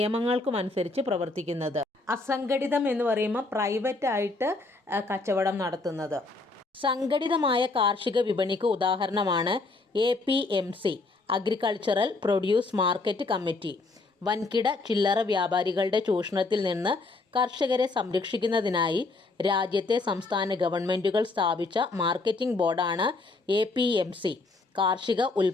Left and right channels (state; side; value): quieter; right; 3.5 dB